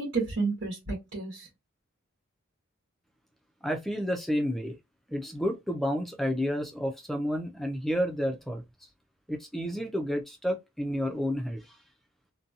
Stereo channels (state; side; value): normal; both; correlation 0.86